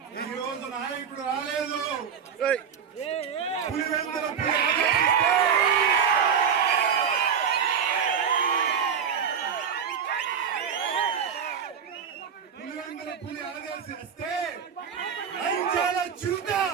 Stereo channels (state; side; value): quieter; left; 7.3 dB